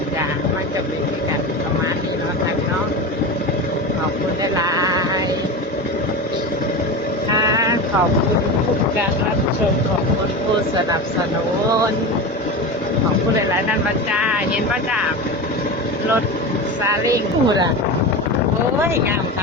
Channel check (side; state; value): both; normal; correlation 0.25